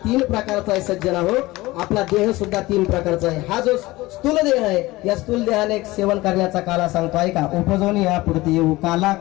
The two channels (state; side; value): quieter; right; 19.6 dB